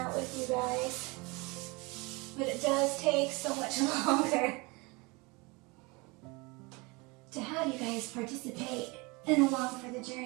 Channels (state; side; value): quieter; left; 26.6 dB